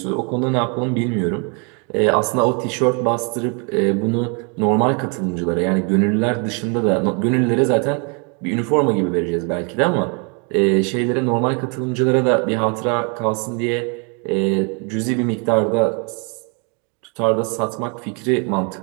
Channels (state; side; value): quieter; left; 35.3 dB